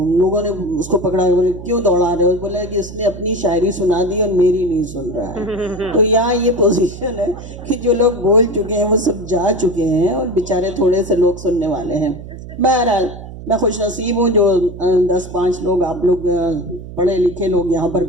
लोगों ने उसको पकड़ा, बोले क्यों दौड़ा रहे हो? बोला कि उसने अपनी शायरी सुना दी और मेरी नहीं सुन रहा है। तो यहाँ ये पोजीशन है कि जो लोग बोल चुके हैं वो सब जा चुके हैं और बेचारे थोड़े से लोग सुनने वाले हैं। बहरहाल मैं खुश नसीब हूँ जो 10-5 लोग आप लोग पढ़े लिखे लोग यहाँ पर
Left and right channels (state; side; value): noise; right; hum, 13 dB below the sound